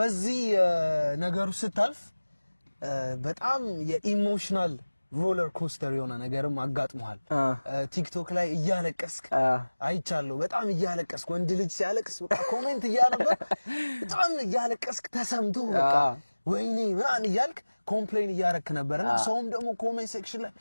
ነገሩ ስታልፍ በጣም የኢሞሽናል ሮለር ኮስተር የሆነ ነገርም አጋጥሟል ቲክቶክ ላይ እያለቀስክ አይቻለሁ በጣም እያለቀስክ ወንድ ልጅ ሲያለቅስ በቃ ኮሜንት እያነበብ በጣም እያለቀስክ ተሰምቶ በቃ ወይኔ ምናን ይያልክ ኮምፕሌን እያረክ ነበርና ሰውም ደግሞ ኮሜንት ሴክሽን ላይ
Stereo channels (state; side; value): inverted; both; correlation -1.00